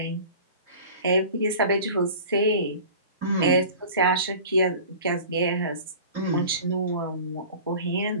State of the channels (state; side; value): inverted; both; correlation -0.41